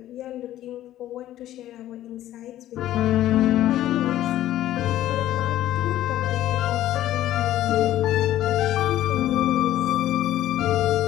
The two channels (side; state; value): right; quieter; 13.4 dB